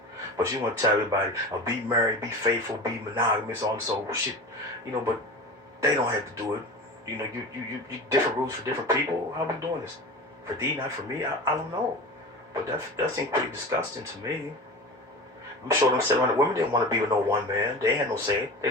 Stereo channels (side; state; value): both; normal; correlation 0.32